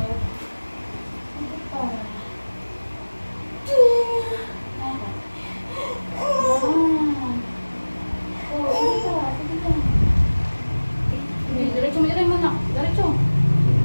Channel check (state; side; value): inverted; both; correlation -1.00